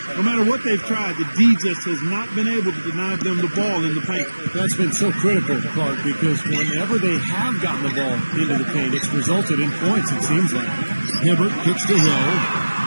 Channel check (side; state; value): both; inverted; correlation -1.00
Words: No matter what they've tried, the D just has not been able to deny them the ball in the paint. That's been so critical, Clark, because whenever they have gotten the ball into the paint, it's resulted in points, it seems like. Hibbert kicks to Hill.